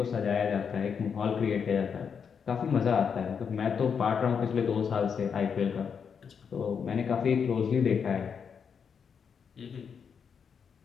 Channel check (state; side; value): quieter; right; 6.7 dB